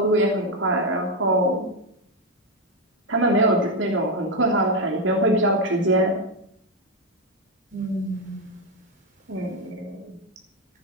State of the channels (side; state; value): both; normal; correlation 0.06